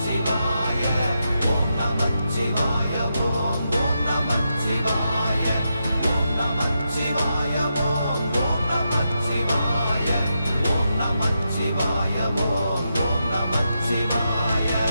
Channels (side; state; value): both; inverted; correlation -0.85